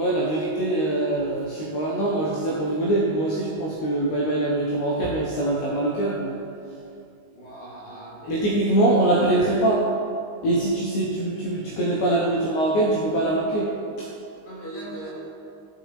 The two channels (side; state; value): right; late; 19 ms